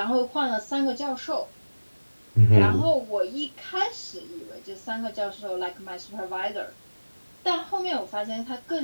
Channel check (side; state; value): both; inverted; correlation -1.00